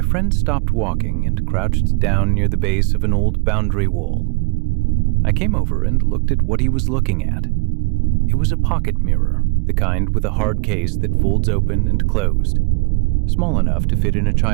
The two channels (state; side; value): quieter; left; 30.2 dB